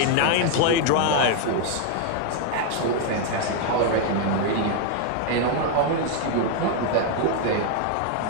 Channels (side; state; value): both; different; correlation 0.00